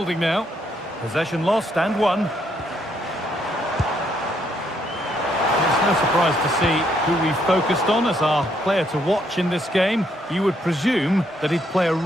now. Possession lost and won. No surprise to see who we focused on as our player to watch in this game. You would presume that he'd play a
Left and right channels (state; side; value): normal; both; correlation 0.73